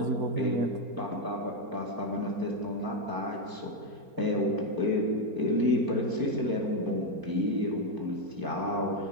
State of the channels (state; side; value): late; left; 4.4 ms